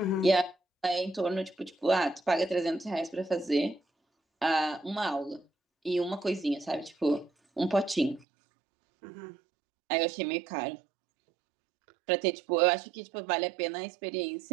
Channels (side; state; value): left; drops out; at 8.2 s